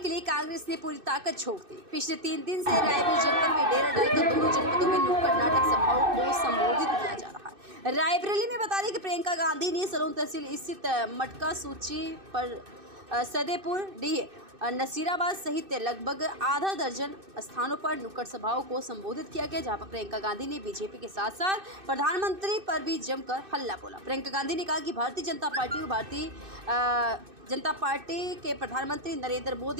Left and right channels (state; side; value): late; left; 2.6 ms